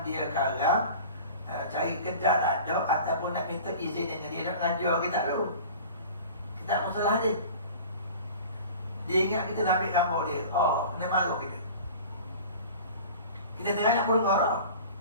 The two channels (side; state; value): both; inverted; correlation -0.40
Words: dia karang, cari kedai tak ada, ataupun nak minta izin dengan dia nak ngajar kitab tu. Kitab masalah dia. Dia ingat kita nak ambil gambar dia. Oh, kena marah kita. Kita tengah nak perenggarak.